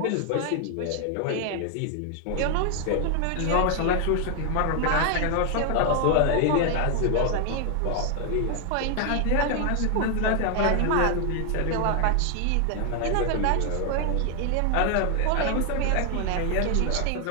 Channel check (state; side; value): different; both; correlation 0.00